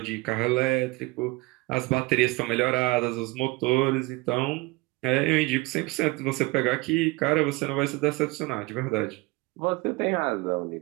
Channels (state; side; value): quieter; left; 22.6 dB